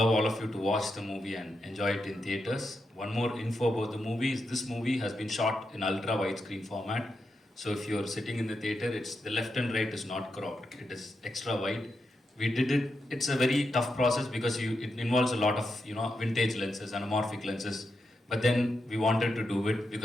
all of you to watch the movie and enjoy it in theaters. One more info about the movie is this movie has been shot in ultra widescreen format. So if you're sitting in the theater, it's the left and right is not cropped. It is extra wide. We did it. It's a very tough process because it involves a lot of vintage lenses, anamorphic lenses. But then we wanted to do it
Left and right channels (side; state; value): both; normal; correlation 0.85